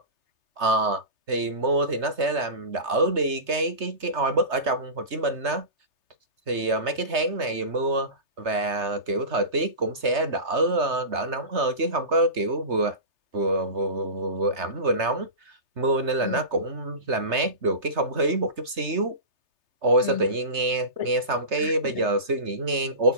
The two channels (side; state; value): left; late; 3.3 ms